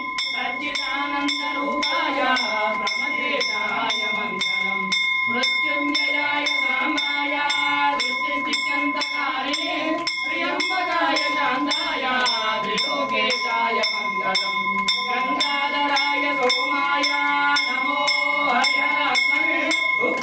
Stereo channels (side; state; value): both; identical; correlation 1.00